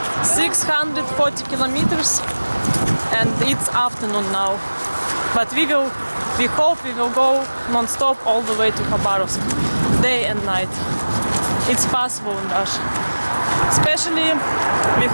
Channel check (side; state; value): both; inverted; correlation -1.00